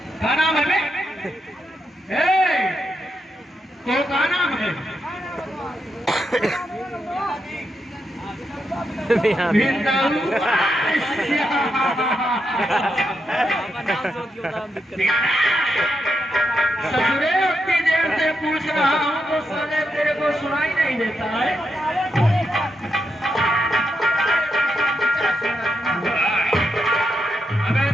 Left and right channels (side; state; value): both; normal; correlation 0.83